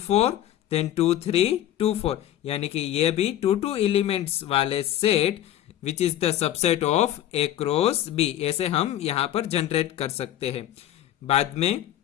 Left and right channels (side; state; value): right; quieter; 12.4 dB